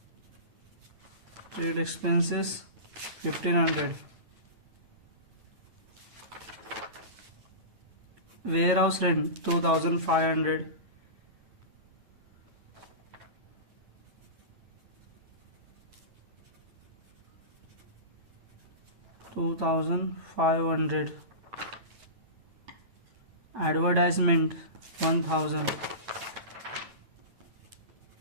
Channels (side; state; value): left; late; 8.9 ms